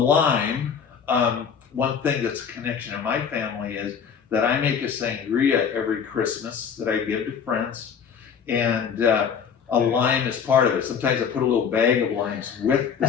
one thing that's a connection in my family is that I make a sangria every Christmas that I give to friends, and a lime is part of it. Sometimes I put a little bag of limes with the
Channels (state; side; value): quieter; right; 7.1 dB